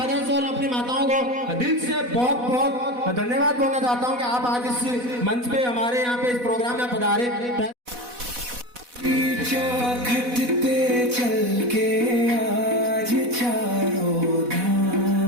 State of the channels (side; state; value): left; late; 4.1 ms